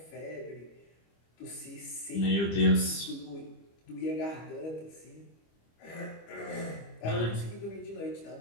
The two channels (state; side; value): late; right; 25 ms